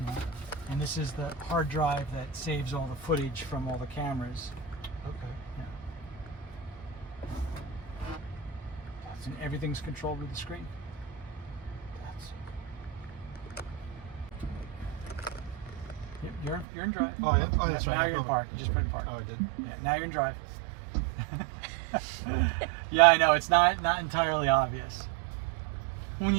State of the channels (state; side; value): drops out; left; at 16.7 s